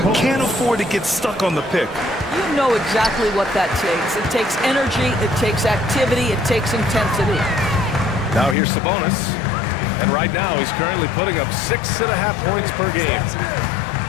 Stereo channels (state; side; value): drops out; right; at 8.6 s